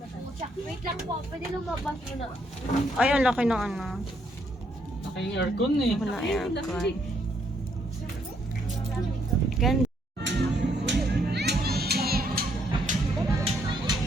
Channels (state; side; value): normal; both; correlation 0.72